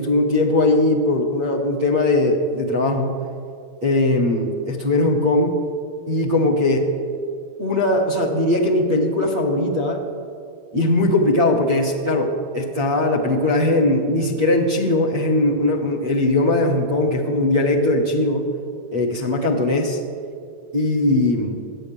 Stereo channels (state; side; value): late; left; 8.5 ms